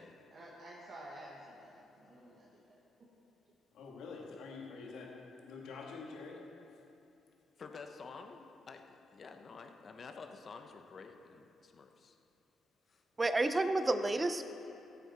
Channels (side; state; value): both; normal; correlation 0.91